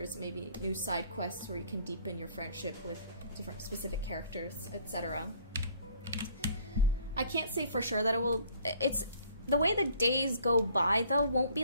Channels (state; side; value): inverted; both; correlation -0.58